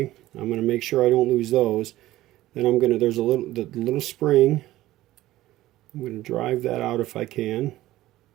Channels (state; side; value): quieter; left; 15.9 dB